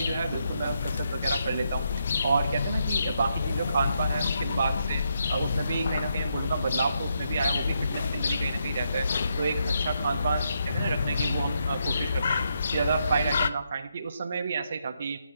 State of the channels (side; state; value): both; inverted; correlation -0.79